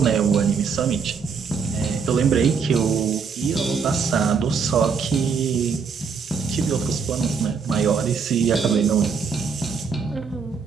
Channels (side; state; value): left; quieter; 5.7 dB